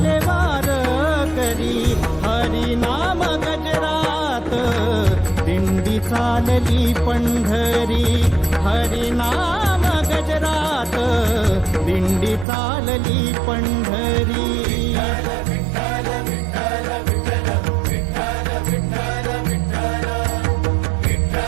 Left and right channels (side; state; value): left; drops out; at 12.5 s